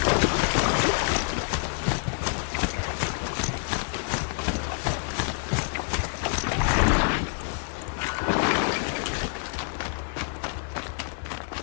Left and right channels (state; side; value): silent; right; 60 dB below the other